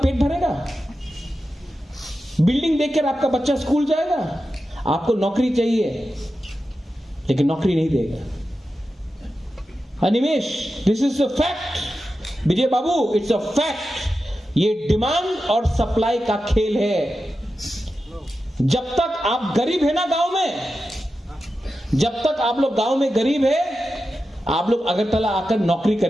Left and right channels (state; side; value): normal; both; correlation 0.91